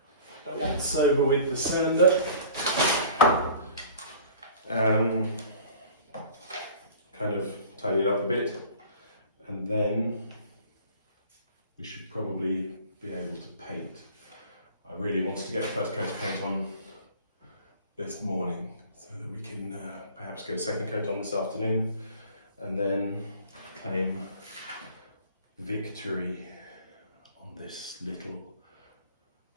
once over with the sander. Kind of tidy it up a bit, and then we should probably be able to paint. I really wanted to get the first coat of paint on this morning so that we can perhaps get a second coat on this afternoon and then claim victory on this little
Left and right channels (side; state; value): both; inverted; correlation -0.46